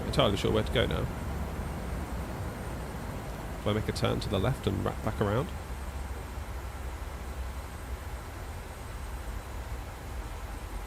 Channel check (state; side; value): identical; both; correlation 1.00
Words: entirely sure where to go now. Do I make a turn to the left and wrap back around?